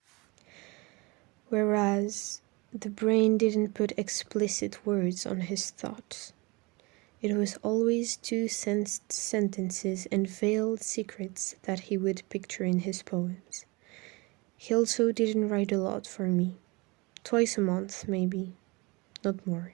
Whereas the brain didn't put explicit words on his thoughts. It was always two sentences and veiled secrets that he would picture in his poems. He also didn't write a lot for me. Twice a month, maybe. Not more.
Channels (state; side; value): quieter; left; 25.9 dB